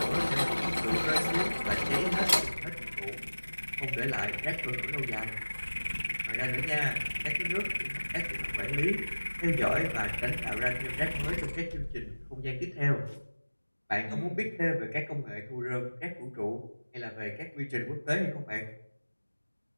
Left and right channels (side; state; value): both; inverted; correlation -1.00